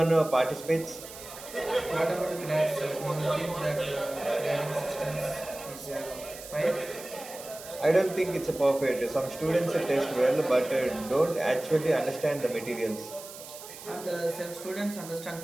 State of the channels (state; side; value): noise; right; hiss, 14 dB below the sound